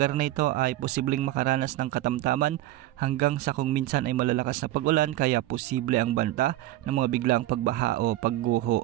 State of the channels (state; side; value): quieter; left; 15.5 dB